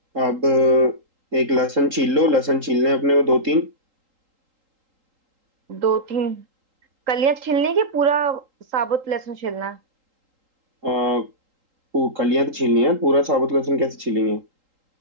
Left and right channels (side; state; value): left; late; 3.8 ms